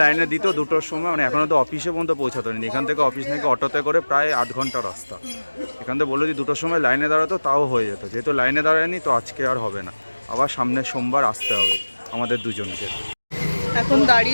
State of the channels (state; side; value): inverted; both; correlation -1.00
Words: লাইনে দিত 2টোর সময়, মানে এখনও তো অফিসে পর্যন্ত পৌঁছাতে হয়নি। এখান থেকে অফিস নাকি অটোতে করে প্রায় 8 ঘন্টা রাস্তা। এখান থেকে বললো যে 2টোর সময় লাইনে দাঁড়াতো তাও হয়ে যেত, যেহেতু লাইনে দাঁড়ায়নি তো আজকে আর হবে না, আবার সামনের সোমবার আসতে হবে আমাদের দুজনকে। এখন